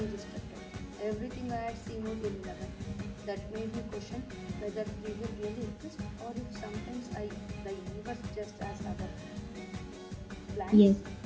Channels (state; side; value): identical; both; correlation 1.00